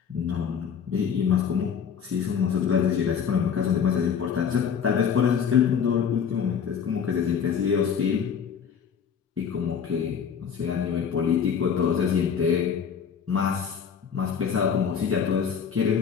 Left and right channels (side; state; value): right; quieter; 7.3 dB